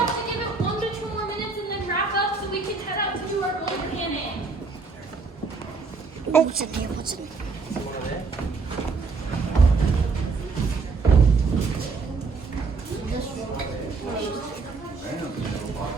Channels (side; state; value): left; quieter; 4.4 dB